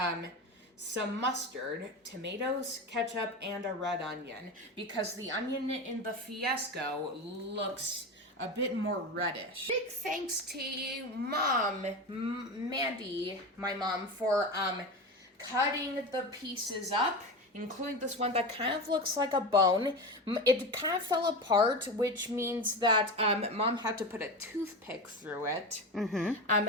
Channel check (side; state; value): both; normal; correlation 0.23